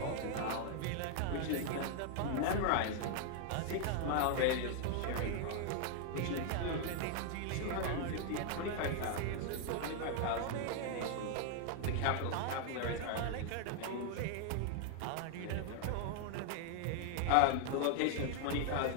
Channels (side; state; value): both; different; correlation 0.00